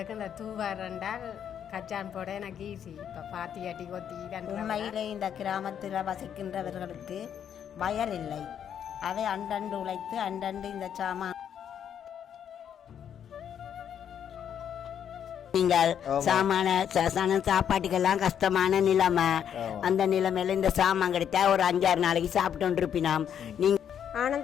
இந்த தூவாரண்டால் கச்சான் போட எனக்கு ஈஸி. இப்போ பாத்தி அடி கொத்தி உண்மையிலே இந்த கிராமத்தில் வசிக்கின்றவர்களுக்கு வயல் இல்லை. அவை அண்டண்டு உழைத்து அண்டண்டு இந்த சாமான் நீங்கள் சாமான சாப்பாட்டுக்கெல்லாம் கஷ்டமான நிலைமை. அந்த நிலைமையில இந்த சாமான் கிடைத்தா ஒரு 5-6 நாளைக்கு சாப்பிட்டு இருப்பினோம். நீங்க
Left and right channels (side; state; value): right; quieter; 8.9 dB